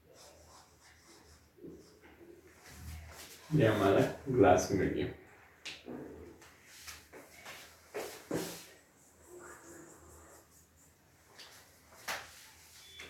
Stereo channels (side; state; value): both; identical; correlation 1.00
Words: ये हमारा ग्लास मीडियम.